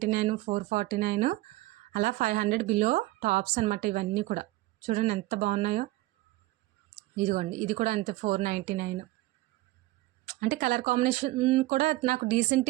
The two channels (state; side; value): quieter; left; 18.4 dB